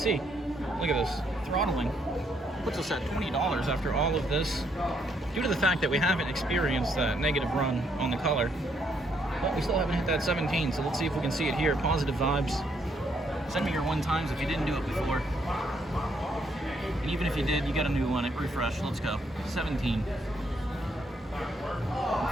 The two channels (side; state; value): both; normal; correlation 0.73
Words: look at this. Throttling puts us at $20 after all of this, due to the fact that we haven't experienced that negative run on the color. But we still haven't hit that 17, so let's see if we can see it here. Positive vibes. Send me your 1 times if you didn't do it before. And even if you did, you got a new one. Refresh. Let's go. 17.